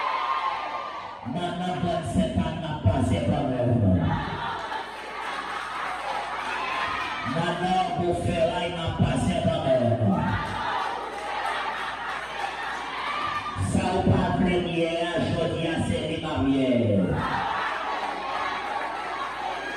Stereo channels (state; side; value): identical; both; correlation 1.00